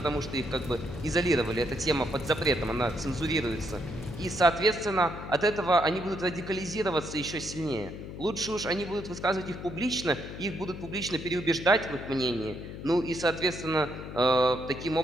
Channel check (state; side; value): noise; left; hum, 10 dB below the sound